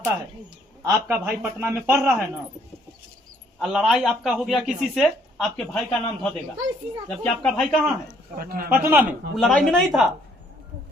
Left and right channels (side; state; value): both; normal; correlation 0.65